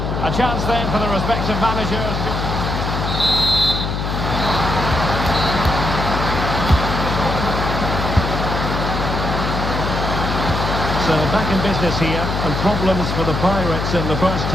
A chance then for the respective managers. So back in business here, and problems for the Pirates in the first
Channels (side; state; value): left; noise; hum, 2 dB below the sound